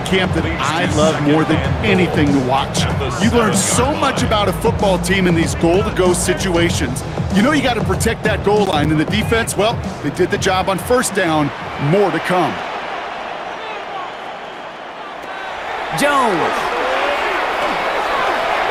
camp that I love more than anything to watch. You learn so much about a football team in these goal-to-go situations. You know you got to protect that goal line, and the defense, well, they did the job on 1st down. More to come. Jones.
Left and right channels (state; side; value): identical; both; correlation 1.00